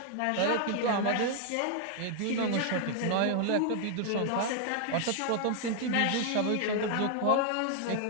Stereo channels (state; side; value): different; both; correlation 0.00